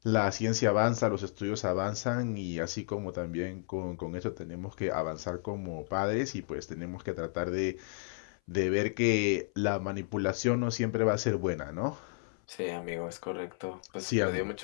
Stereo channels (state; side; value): silent; right; 56 dB below the other